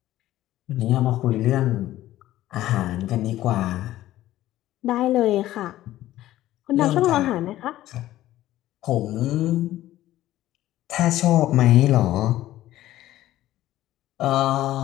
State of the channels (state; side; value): quieter; right; 14.6 dB